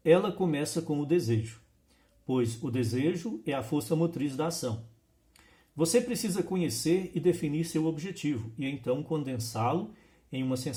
ela começa com o desejo, pois o desejo é a força motriz da ação. Você precisa conhecer e definir seu objetivo e então condensá-lo em uma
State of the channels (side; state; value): both; identical; correlation 1.00